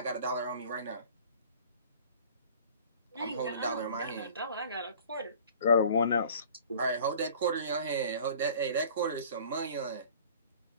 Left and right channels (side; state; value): both; inverted; correlation -0.47